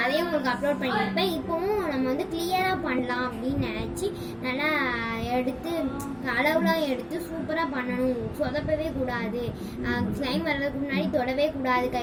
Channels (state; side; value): identical; both; correlation 1.00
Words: அதையும் உங்களுக்கு அப்லோட் பண்ணியிருப்பேன். இப்போவும் நம்ம வந்து கிளியராக பண்ணலாம் அப்படின்னு நினச்சி நல்லா எடுத்து அளவுலாம் எடுத்து சூப்பராக பண்ணணும், சொதப்பவே கூடாது, ஸ்லைம் வர்றதுக்கு முன்னாடி தொடவே கூடாது